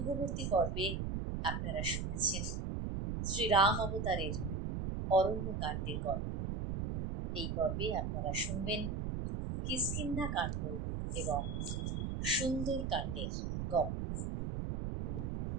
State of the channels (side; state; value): right; noise; rumble, 2 dB below the sound